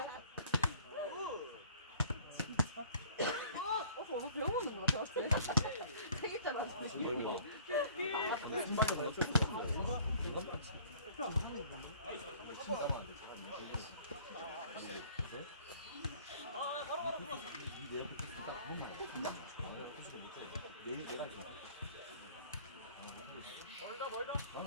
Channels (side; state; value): both; inverted; correlation -0.52